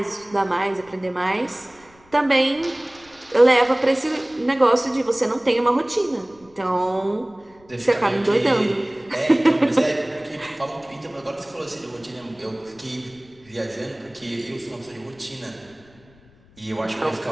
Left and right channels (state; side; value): noise; left; rumble, 28 dB below the sound